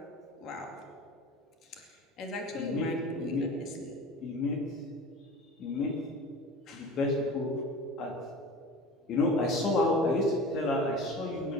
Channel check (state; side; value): normal; both; correlation 0.37